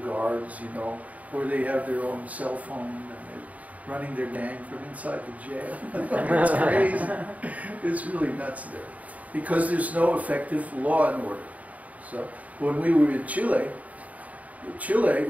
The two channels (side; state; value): left; late; 0.071 ms